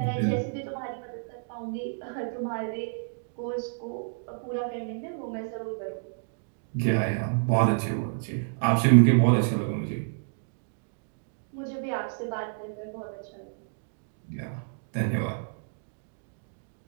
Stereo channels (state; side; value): silent; left; digital silence